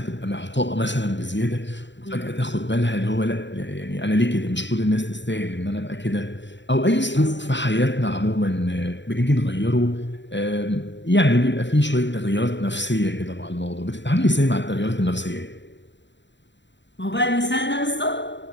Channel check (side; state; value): right; late; 0.52 ms